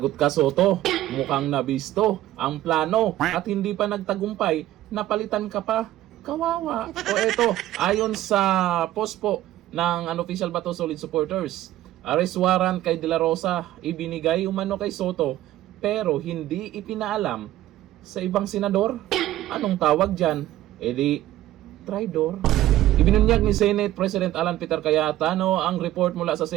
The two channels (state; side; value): quieter; left; 14.5 dB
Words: ka, Soto. Mukhang nabisto ang plano at hindi pa nagtagumpay, napalitan ka pa. Kawawa. O eto, ayon sa post po ng Unofficial Bato Solid supporters, arrest warrant kay De La Rosa ibinigay umano kay Soto pero hindi ipinaalam sa ibang senador. Anong tawag dyan? Di traidor. Ibinunyag ni Senate President Alan Peter Cayetano ang report mula sa